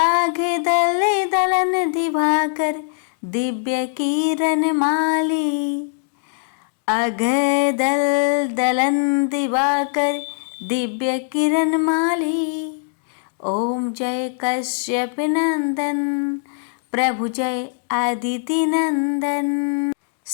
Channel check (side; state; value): right; silent; digital silence